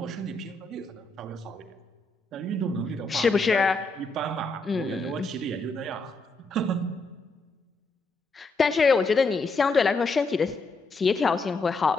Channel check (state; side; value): quieter; right; 3.2 dB